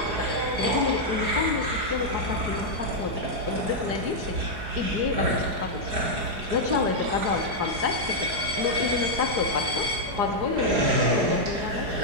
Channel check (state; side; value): late; left; 4.8 ms